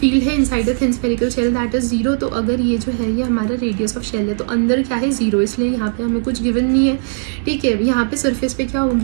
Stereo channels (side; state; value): left; silent; 68 dB below the other